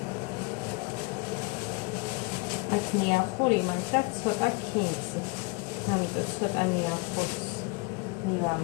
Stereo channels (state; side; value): quieter; right; 27.5 dB